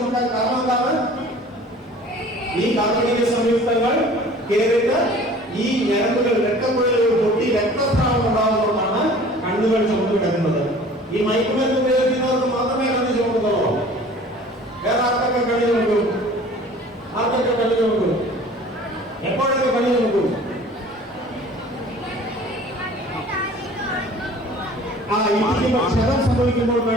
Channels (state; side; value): normal; both; correlation 0.47